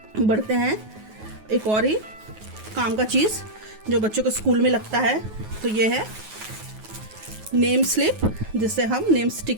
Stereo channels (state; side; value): late; left; 9.4 ms